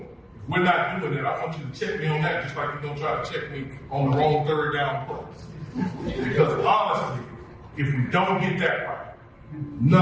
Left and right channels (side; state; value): both; identical; correlation 1.00